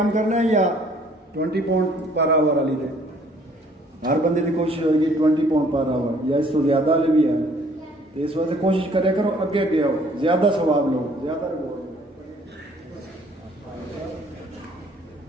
کرنا ہے یا 20 پاؤنڈ پر آور والی تے ہر بندے کی کوشش ہوئے گی 20 پاؤنڈ پر آور یا اس کو زیادہ والے بھی ہے. تو اس وجہ سے کوشش کرے کرو اگے اگے آؤ، زیادہ ثواب لو، زیادہ رeward.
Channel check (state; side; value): normal; both; correlation 0.59